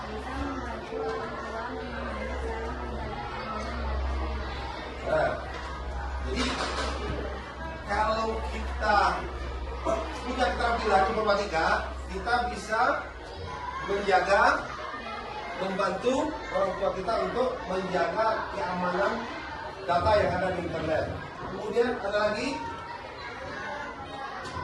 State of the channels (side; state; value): both; identical; correlation 1.00